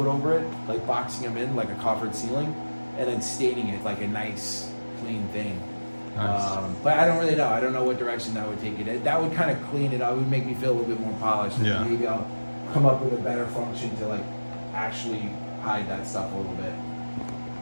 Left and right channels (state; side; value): inverted; both; correlation -1.00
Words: over it, like boxing them in like a coffered ceiling, and then staining it like a nice, clean thing. Nice. But I don't really know. I don't know what direction that would take it. That would kind of clean it up. It would make me feel a little bit more polished. Yeah. And maybe I'll come up with a better function to like actually hide that stuff a little bit.